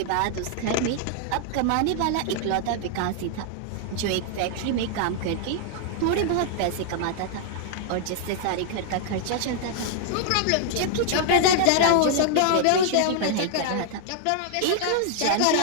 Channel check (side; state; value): both; different; correlation -0.01